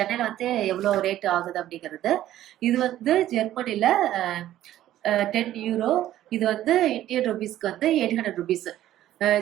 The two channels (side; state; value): left; quieter; 13.1 dB